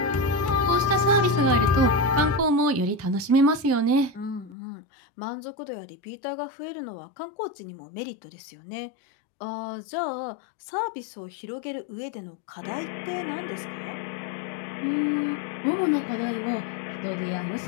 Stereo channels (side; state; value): right; drops out; at 4.5 s